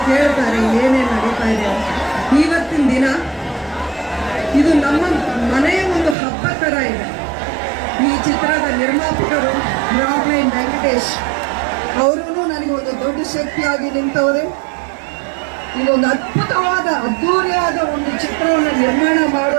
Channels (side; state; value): left; drops out; at 6.2 s